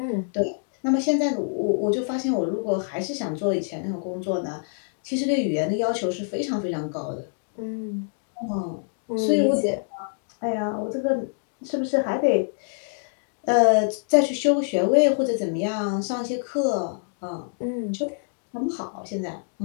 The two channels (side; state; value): right; silent; digital silence